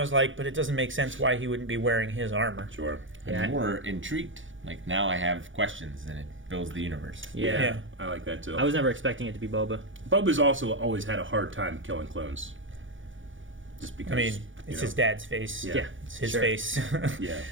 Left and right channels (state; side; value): late; left; 0.56 ms